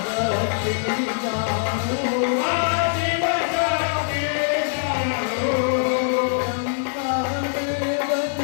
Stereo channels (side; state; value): right; silent; digital silence